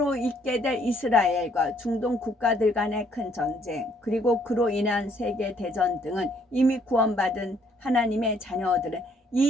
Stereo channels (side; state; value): both; normal; correlation 0.66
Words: 있게 될 이스라엘과 중동 국가들 간의 큰 전쟁, 그리고 그로 인한 세계대전 등은 이미 구원받은 하나님의 자녀들은